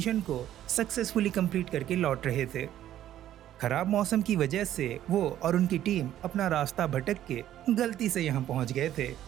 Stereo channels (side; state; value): left; quieter; 12.1 dB